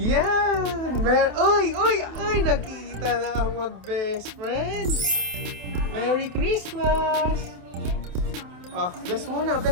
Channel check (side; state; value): left; late; 28 ms